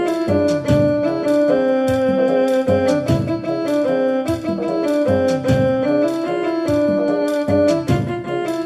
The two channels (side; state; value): both; identical; correlation 1.00